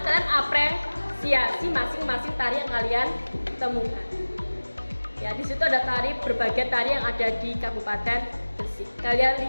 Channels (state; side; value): inverted; both; correlation -1.00